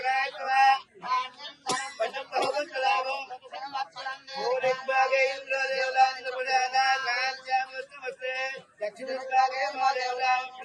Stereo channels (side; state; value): both; identical; correlation 1.00